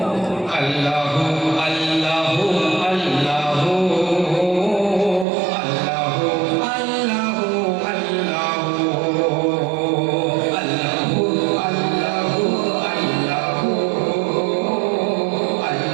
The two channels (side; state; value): left; drops out; at 5.2 s